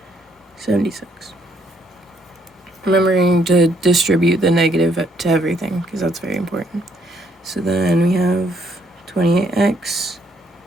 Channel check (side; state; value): both; normal; correlation 0.70